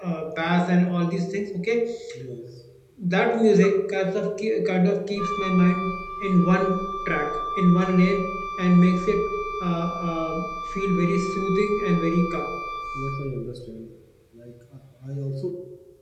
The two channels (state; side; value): identical; both; correlation 1.00